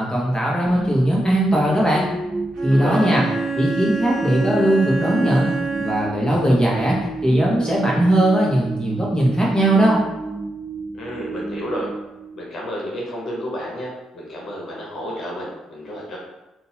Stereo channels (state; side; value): normal; both; correlation 0.86